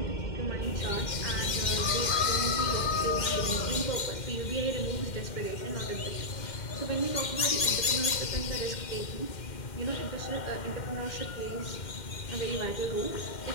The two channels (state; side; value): late; right; 2.1 ms